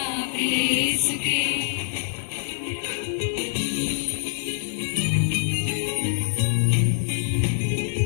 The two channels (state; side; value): silent; right; digital silence